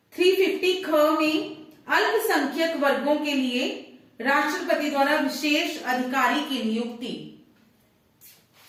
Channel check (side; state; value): both; identical; correlation 1.00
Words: 350 ख में अल्पसंख्यक वर्गों के लिए राष्ट्रपति द्वारा विशेष अधिकारी की नियुक्ति।